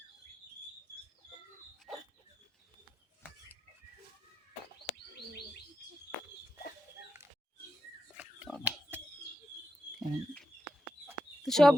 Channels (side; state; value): both; normal; correlation 0.88